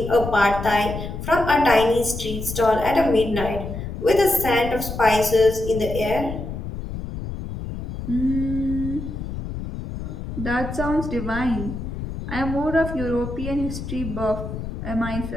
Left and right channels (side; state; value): left; noise; rumble, 7 dB below the sound